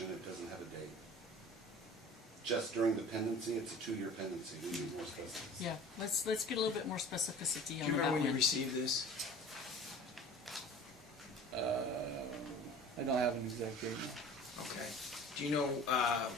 It doesn't have a date. Just during the pendency, it's a 2-year pendency. We need more specifics. Yeah, let's get a little bit more specificity Do you on remember that when you one. received this? I don't have an exact date now. Okay. Do you know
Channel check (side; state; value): both; normal; correlation 0.42